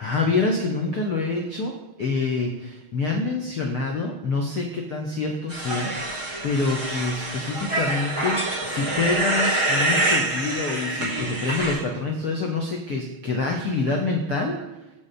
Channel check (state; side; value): late; left; 6.4 ms